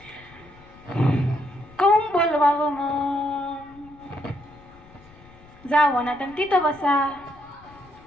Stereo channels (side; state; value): left; noise; rumble, 24 dB below the sound